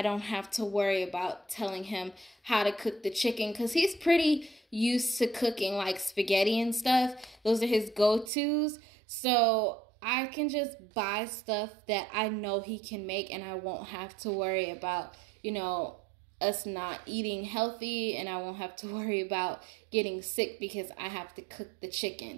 don't have to worry about telling him how to cook the chicken because he's pretty used to cooking like spaghetti and stuff. Those are his go-tos. So I can just buy stuff that I know he can make and I won't have to worry about, you know, us not eating healthy, and I won't have to worry about getting sick because I have to cook the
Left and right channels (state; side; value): drops out; left; at 8.3 s